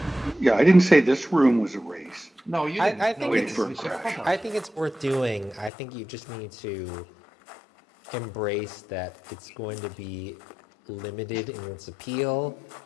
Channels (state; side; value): drops out; right; at 5.7 s